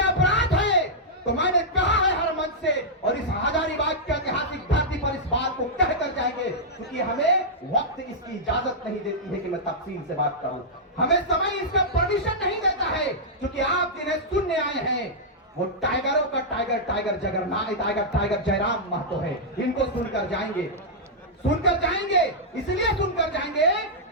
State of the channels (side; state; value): both; normal; correlation -0.09